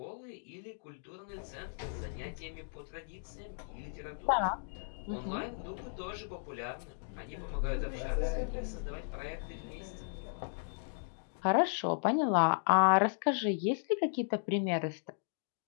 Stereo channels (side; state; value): right; silent; digital silence